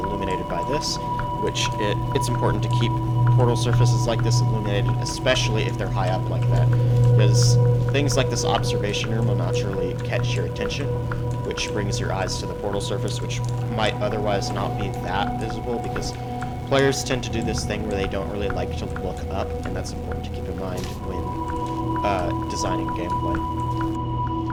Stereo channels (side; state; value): both; identical; correlation 1.00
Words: by this, which it's important to keep portal surfaces like this illuminated, especially if they're high up like that, because things like this observation room will naturally catch your attention, which brings your eyes to the portal surface, which might otherwise not be that visible, because players tend to do this thing where they don't really like to look up, and that's important to keep in mind when designing gameplay.